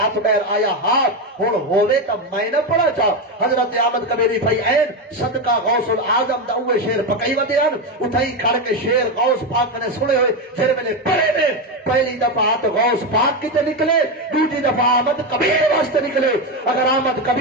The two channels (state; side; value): normal; both; correlation 0.12